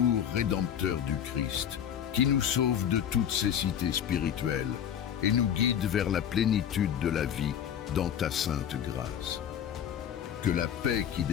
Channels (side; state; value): right; quieter; 9.2 dB